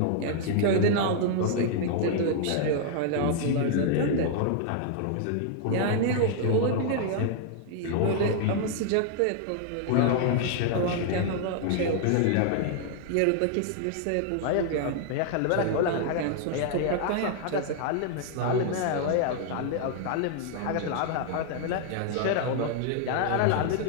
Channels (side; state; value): both; different; correlation 0.00